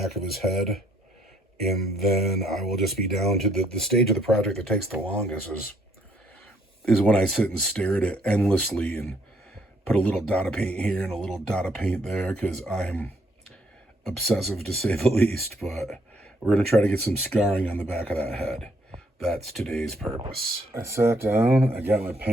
of his head. And then I will just be down to the stage of the project that takes the longest is when I sit and stare at it endlessly and put a little dot of paint here and a little dot of paint there because I'm obsessive to say the least. But we're going to try to get some scarring on the back of that head. That's today's purpose. I sat down, I got my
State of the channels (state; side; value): normal; both; correlation 0.68